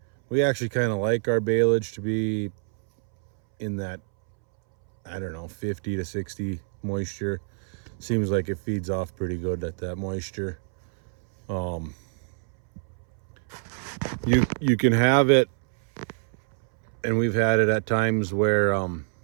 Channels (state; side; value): silent; left; 61 dB below the other